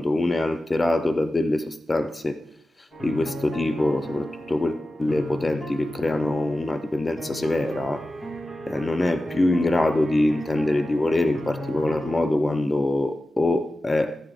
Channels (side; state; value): both; normal; correlation 0.94